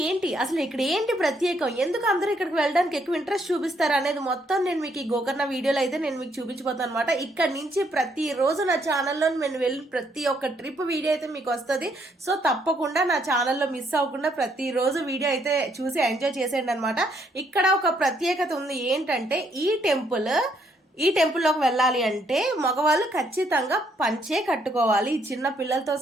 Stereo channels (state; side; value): normal; both; correlation 0.71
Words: ఏంటి, అసలు ఇక్కడ ఏంటి ప్రత్యేకం, ఎందుకు అందరూ ఇక్కడికి వెళ్ళడానికి ఎక్కువ ఇంట్రెస్ట్ చూపిస్తారు అనేది మొత్తం నేను మీకు ఈ గోకర్ణ వీడియోలో అయితే నేను మీకు చూపించబోతాను అనమాట. ఇక్కడ నుంచి ప్రతి రోజు నా ఛానల్లో నేను వెళ్ళిన ప్రతి ఒక్క ట్రిప్ వీడియో అయితే మీకు వస్తుంది. సో తప్పకుండా నా ఛానల్లో మిస్ అవ్వకుండా ప్రతి రోజు వీడియో అయితే చూసి ఎంజాయ్ చేసేయండి అనమాట. ఇక్కడ ఒక ప్రత్యేకత ఉంది, ఏంటంటే ఈ టెంపుల్లోకి వెళ్ళాలి అంటే మగవాళ్ళు ఖచ్చితంగా పంచే కట్టుకోవాలి, చిన్న పిల్లలతో